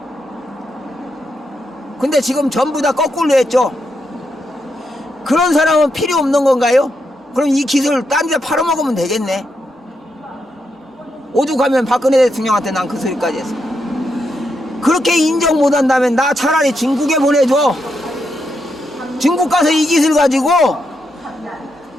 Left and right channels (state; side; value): normal; both; correlation 0.82